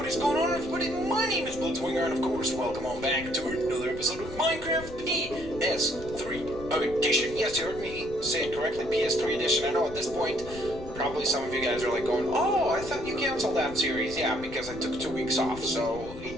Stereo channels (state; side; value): noise; left; rumble, 14 dB below the sound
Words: is going on, everybody? My name is Blitzwinger, and of course, welcome on back to another episode of Minecraft PS3 Edition. Yes, you heard me say it correctly, PS3 Edition. I know at this point, probably some of you guys are like going, oh, I thought you canceled that series. Yeah, because I took 2 weeks off, so